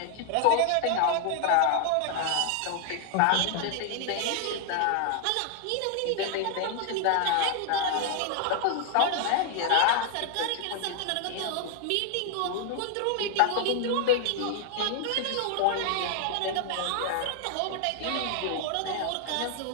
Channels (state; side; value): different; both; correlation 0.00